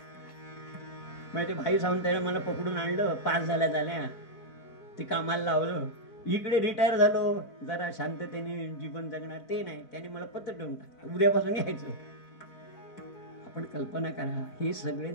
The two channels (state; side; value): late; right; 4.5 ms